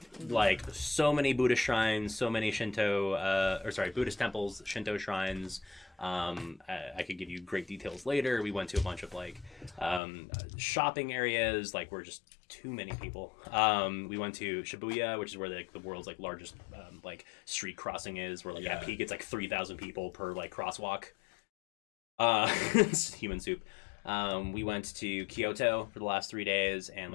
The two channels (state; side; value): drops out; right; at 10.0 s